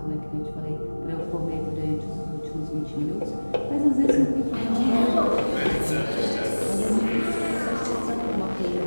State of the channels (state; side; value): inverted; both; correlation -1.00